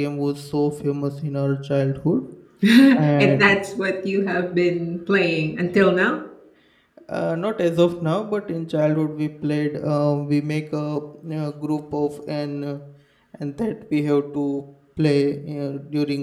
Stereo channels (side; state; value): both; identical; correlation 1.00